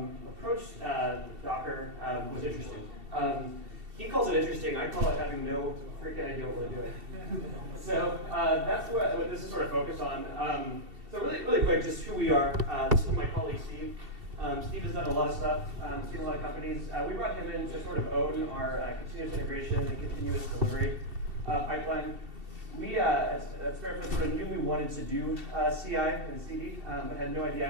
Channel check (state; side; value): late; left; 2.7 ms